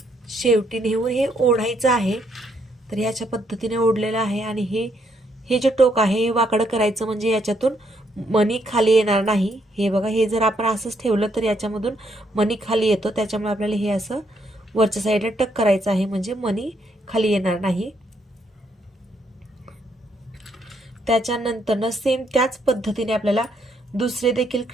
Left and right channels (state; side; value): normal; both; correlation 0.74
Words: शेवटी नेऊन हे ओढायचं आहे. तर याच्या पद्धतीने ओढलेलं आहे. आणि हे जे टोक आहे हे वाकडं करायचं, म्हणजे याच्यातून मणी खाली येणार नाही. हे बघा, हे जर आपण असंच ठेवलं तर याच्यामधून मणी खाली येतो. त्याच्यामुळे आपल्याला हे असं वरच्या साईडला टक करायचं आहे, म्हणजे मणी खाली येणार नाही. त्याच्यानंतर सेम त्याच पद्धतीने आपल्याला दुसरे देखील